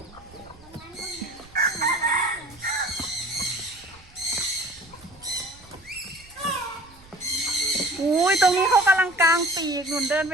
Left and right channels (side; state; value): right; noise; rumble, 25 dB below the sound